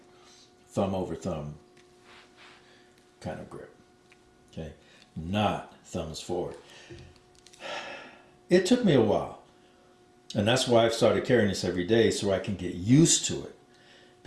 thumb over thumb kind of grip. Okay, not thumbs forward. It took me a while, and that's why I've started carrying this every day, so I can get used to it,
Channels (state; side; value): identical; both; correlation 1.00